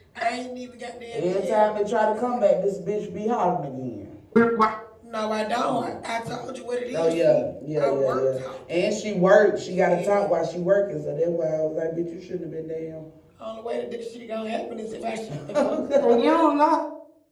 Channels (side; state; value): both; identical; correlation 1.00